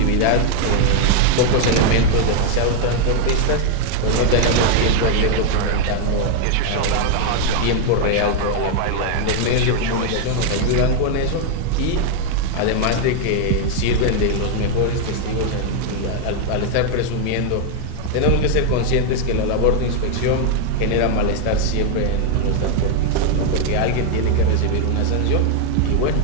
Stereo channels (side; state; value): both; different; correlation 0.00